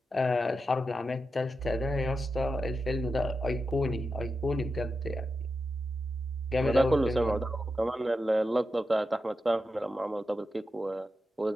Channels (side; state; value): both; normal; correlation 0.89